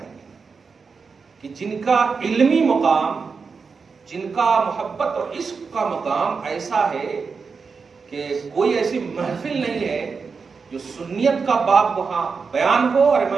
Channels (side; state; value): left; quieter; 5.1 dB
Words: گے کہ جن کا علمی مقام، جن کا محبت اور عشق کا مقام ایسا ہے کہ کوئی ایسی محفل نہیں ہے جو سنیت کا باب وہاں بیان ہو اور